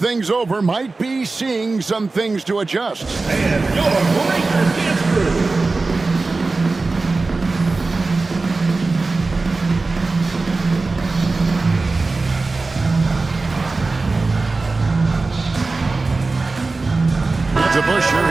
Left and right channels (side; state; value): left; quieter; 3.6 dB